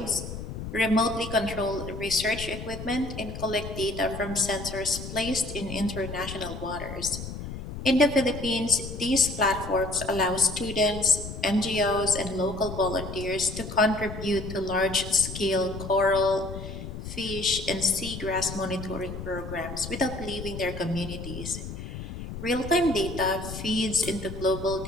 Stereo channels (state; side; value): noise; left; rumble, 9 dB below the sound